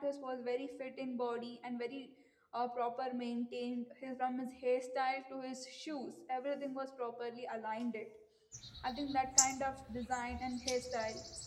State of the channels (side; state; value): both; identical; correlation 1.00